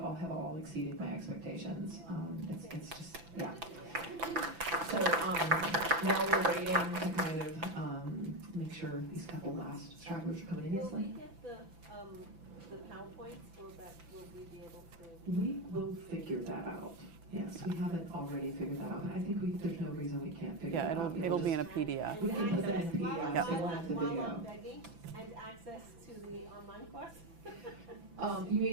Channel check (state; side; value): late; left; 6.0 ms